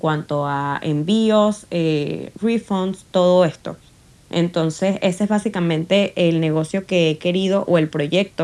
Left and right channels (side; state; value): both; identical; correlation 1.00